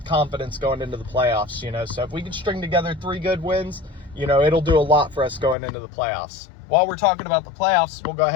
confidence going into the playoffs, So if we can string together 3 good wins, it'll do a lot for us going into the playoffs. While we're talking about the playoffs, we'll go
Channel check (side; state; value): right; drops out; at 5.6 s